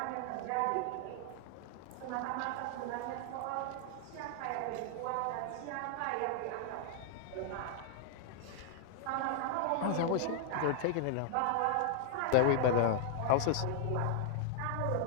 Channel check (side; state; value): both; different; correlation -0.01